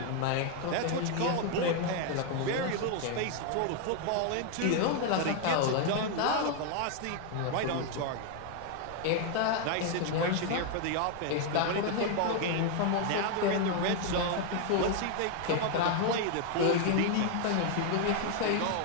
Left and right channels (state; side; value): different; both; correlation 0.01